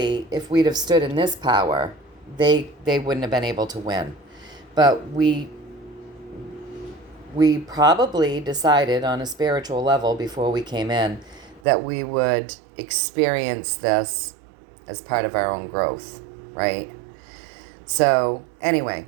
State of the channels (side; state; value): left; drops out; at 11.6 s